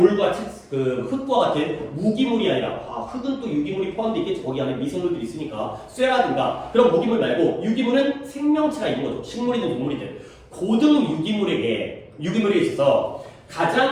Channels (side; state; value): both; identical; correlation 1.00